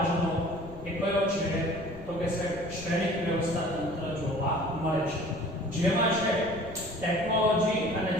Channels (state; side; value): noise; left; rumble, 16 dB below the sound